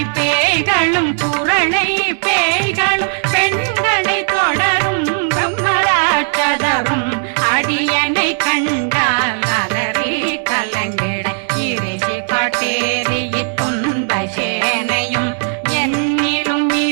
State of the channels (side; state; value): left; silent; digital silence